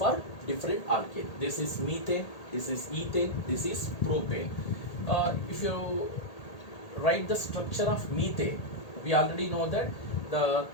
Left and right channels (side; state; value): right; late; 1.8 ms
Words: different alkane. This is methane, this is ethane, this is propane. If you write the structure of methane, we already know that the